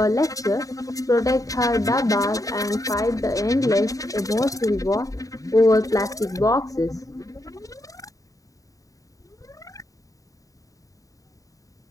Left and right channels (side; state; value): right; late; 0.16 ms